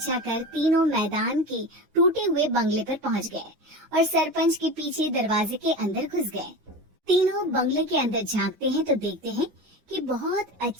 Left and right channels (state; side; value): late; left; 9.5 ms